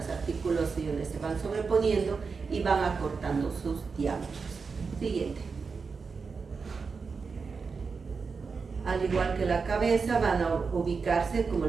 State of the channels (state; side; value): quieter; left; 5.0 dB